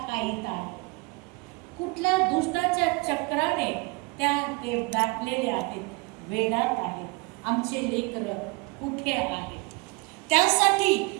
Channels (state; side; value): quieter; left; 27.9 dB